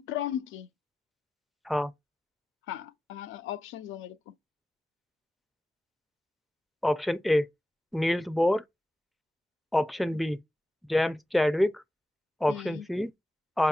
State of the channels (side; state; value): both; normal; correlation 0.93